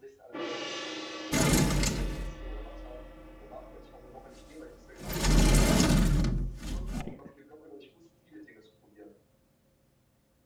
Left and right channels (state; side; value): identical; both; correlation 1.00